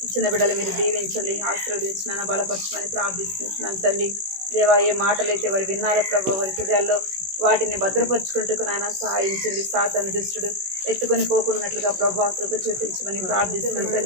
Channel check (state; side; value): late; left; 16 ms